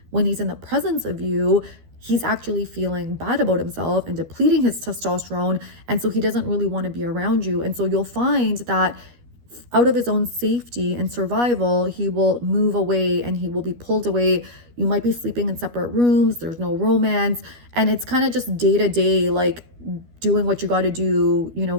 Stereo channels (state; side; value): late; left; 12 ms